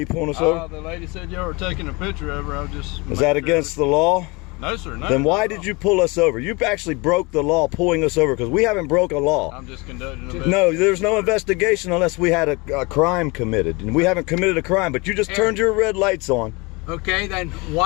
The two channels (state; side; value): quieter; right; 26.5 dB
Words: pulling us over? The lady said y'all were taking a picture of her. I was just. Is that against the law? No, sir. No. Then why did you pull us over? You actually broke the law pulling us over because we haven't broke a law. I'm just conducting an No, there's no investigation unless we had a crime committed. And we haven't committed a crime, but you just turned your red lights on. Okay, then